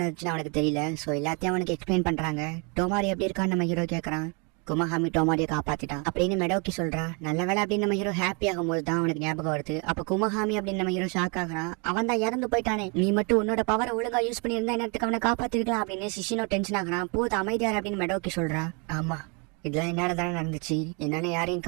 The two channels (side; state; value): left; quieter; 33.5 dB